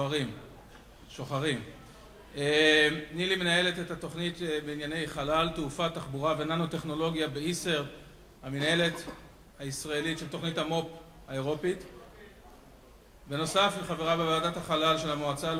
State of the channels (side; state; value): both; identical; correlation 1.00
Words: שוחרים. נילי מנהלת את התוכנית בענייני חלל, תעופה, תחבורה וננו-טכנולוגיה באיסרד, המנהלת הישראלית של תוכנית המו"פ האירופית. בנוסף היא חברה בוועדת החלל של המועצה